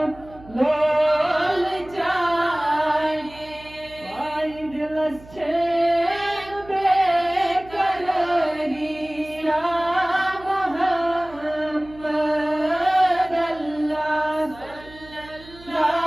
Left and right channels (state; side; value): noise; right; hum, 21 dB below the sound